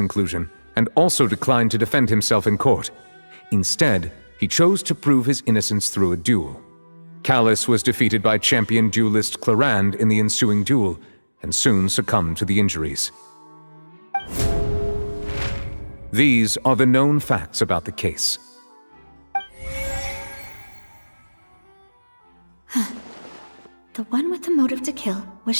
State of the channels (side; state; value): both; inverted; correlation -1.00